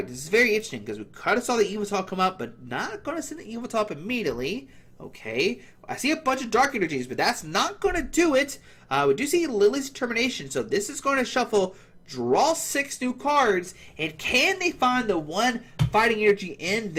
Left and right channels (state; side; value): identical; both; correlation 1.00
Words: this is very interesting, because we kind of saw the Evital come up, but not going to send the Evital up immediately. Okay. I see a bunch of Dark Energies, but that's not going to do it. We do see Lily's Determination, so this is going to shuffle, draw 6 new cards, and can they find the 1 Fighting Energy in